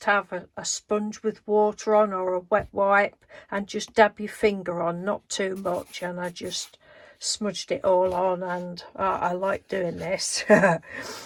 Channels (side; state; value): both; identical; correlation 1.00